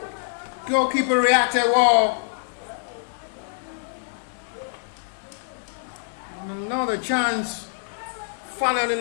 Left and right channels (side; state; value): right; silent; 62 dB below the other